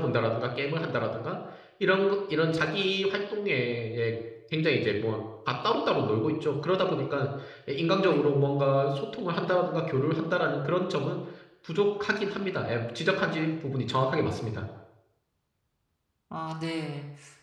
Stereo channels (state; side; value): identical; both; correlation 1.00